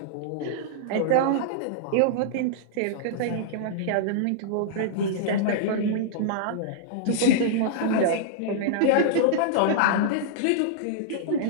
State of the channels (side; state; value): both; different; correlation -0.02